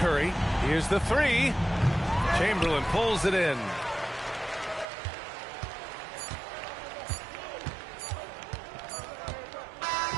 Here's the three. Chamberlain pulls it in.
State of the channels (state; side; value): drops out; left; at 4.9 s